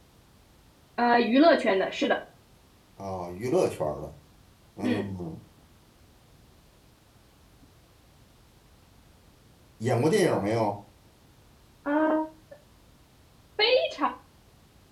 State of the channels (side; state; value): both; identical; correlation 1.00